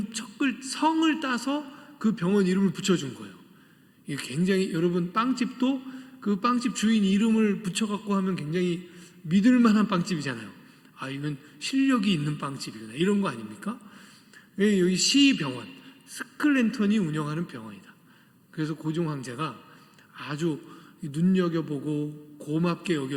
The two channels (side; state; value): both; identical; correlation 1.00